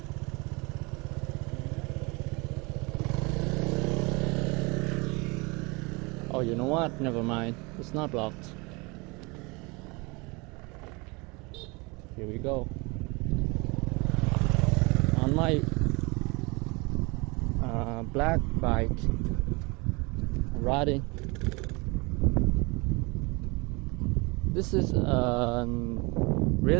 oh, you know what? Never mind. It's not blocked. Here we go. On my black bike, riding. This is a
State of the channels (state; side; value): quieter; left; 27.2 dB